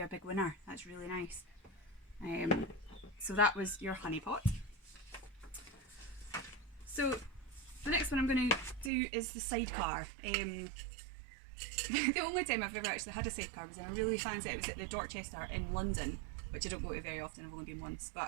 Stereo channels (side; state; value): left; drops out; at 8.9 s